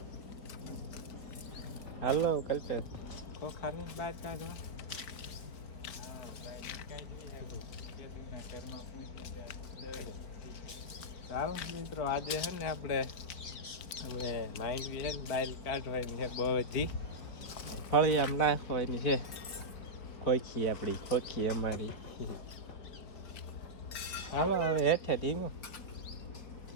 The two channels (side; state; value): right; late; 4.3 ms